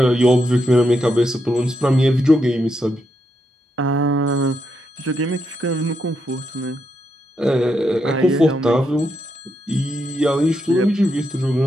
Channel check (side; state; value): both; normal; correlation 0.81